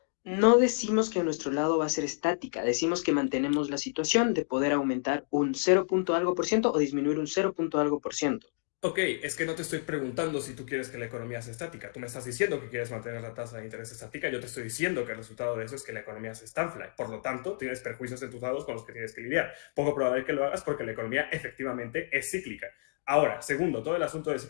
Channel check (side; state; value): right; silent; digital silence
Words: No decimos que nuestro lado va a ser estática, decimos que mantenemos la situación de poder aumentar un 0. Algo por ciento o disminuir un 0. Algo por ciento. Ok, es que no te estoy preguntando si tú quieres que la economía sea estática. Tú me estás diciendo que quieres mantener la tasa de interés estática. Yo te estoy diciendo que el resultado de eso es que la economía se estanfla. Por lo tanto, tienes perjuicios en tus lados con los que tienes que lidiar. Poco probable que lo hagas porque la economía efectivamente es cíclica. Ahora, segundo, todo el asunto del